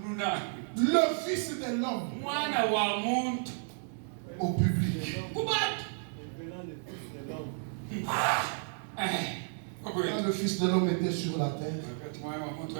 le Fils de l'homme au public. Quand le Fils de l'homme était sur la terre,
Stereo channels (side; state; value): left; silent; 56 dB below the other